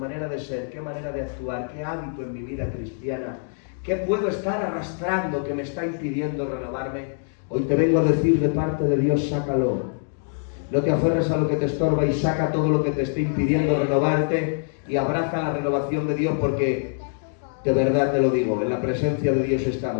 de ser, qué manera de actuar, qué hábito en mi vida cristiana, qué puedo estar arrastrando que me está impidiendo renovarme? Hoy te vengo a decir de parte de Dios, sácalo. No te aferres a lo que te estorba y saca todo lo que te esté impidiendo renovarte y abraza la renovación de Dios, porque de verdad te lo digo, en la presencia de Dios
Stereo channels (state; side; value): silent; right; 62 dB below the other